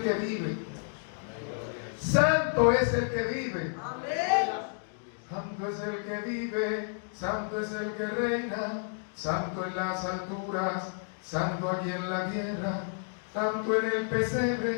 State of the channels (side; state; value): right; silent; digital silence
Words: que vive. Santo es el que vive. Santo es el que vive, santo es el que reina, santo en las alturas, santo aquí en la tierra, santo en el